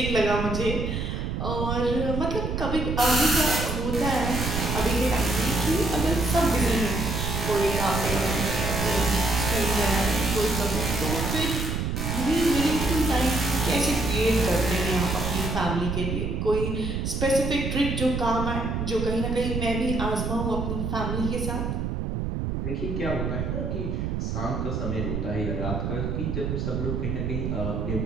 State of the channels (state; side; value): noise; right; rumble, 2 dB below the sound